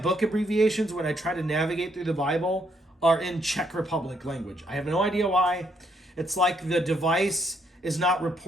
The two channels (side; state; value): both; normal; correlation 0.73